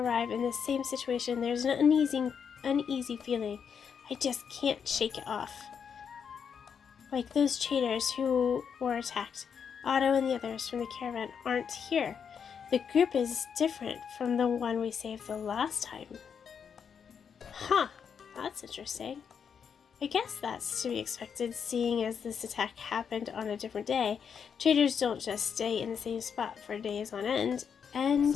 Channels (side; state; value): right; quieter; 7.0 dB